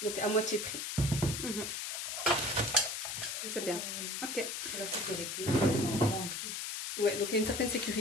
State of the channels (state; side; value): noise; left; hiss, 4 dB below the sound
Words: Donc à moitié prix. Mhm. C'est bien. Ok. Ouais, donc il y a une certaine